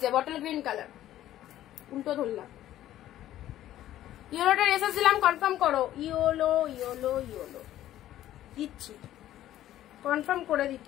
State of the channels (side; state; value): right; quieter; 13.1 dB